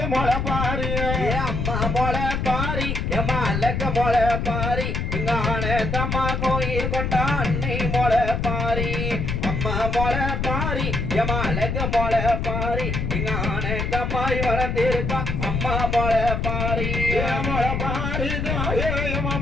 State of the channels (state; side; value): noise; left; rumble, 1 dB below the sound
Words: மொள பாரு அம்மா மொள பாரி எம்மா அழக மொள பாரி இங்க ஆனந்தம்மா கோயில் கொண்டா அன்னை மொள பாரி அம்மா மொள பாரி எம்மா அழக மொள பாரி இங்க ஆனந்தம்மாய் வளர்ந்திருக்கா அம்மா மொள பாரி மொள பாரி தாயே எம்மா